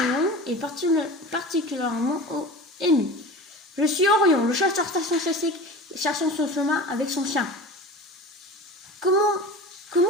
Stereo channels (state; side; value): normal; both; correlation 0.35